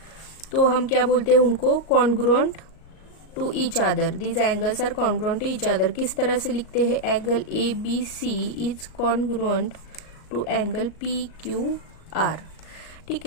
तो हम क्या बोलते हैं उनको, congruent to each other. These angles are congruent to each other. किस तरह से लिखते हैं, angle ABC is congruent to angle PQR। ठीक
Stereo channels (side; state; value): right; late; 38 ms